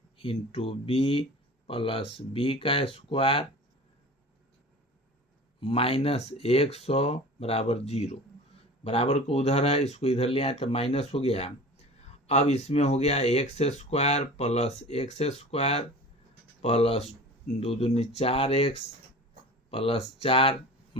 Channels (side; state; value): both; normal; correlation 0.38